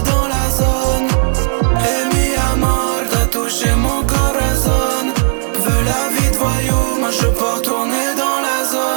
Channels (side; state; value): left; silent; digital silence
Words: dans la zone. Mi amor, t'as touché mon corazon. Veux la vie de voyou, moi je pars tourner dans la